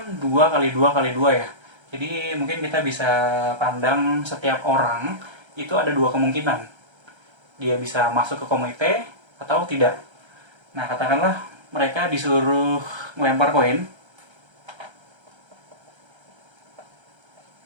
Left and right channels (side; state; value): left; late; 1.3 ms